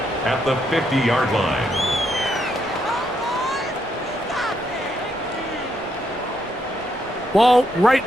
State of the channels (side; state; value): both; normal; correlation 0.77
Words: at the 50-yard line. Ball right